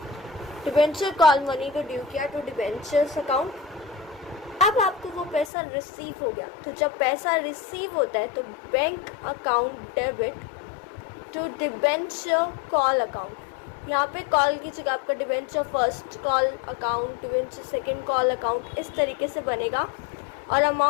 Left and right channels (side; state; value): right; drops out; at 5.5 s